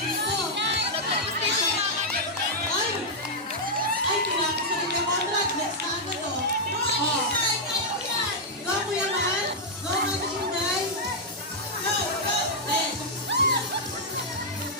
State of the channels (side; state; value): both; normal; correlation -0.05